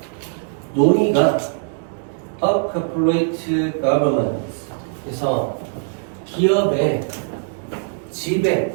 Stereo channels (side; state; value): left; silent; digital silence